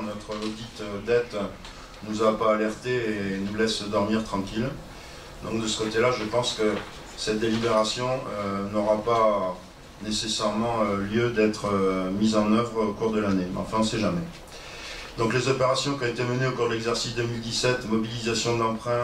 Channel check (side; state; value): both; identical; correlation 1.00